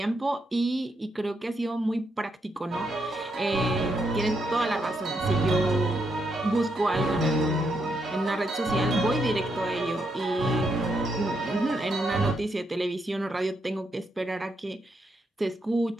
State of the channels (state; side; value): normal; both; correlation 0.79